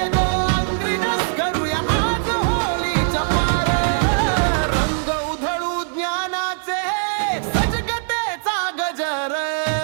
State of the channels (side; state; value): left; silent; 60 dB below the other